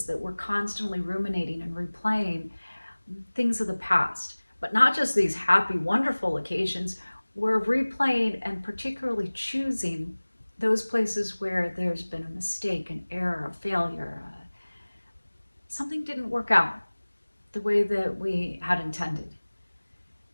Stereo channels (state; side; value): inverted; both; correlation -1.00